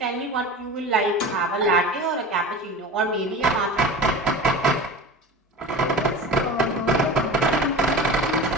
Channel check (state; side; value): normal; both; correlation 0.33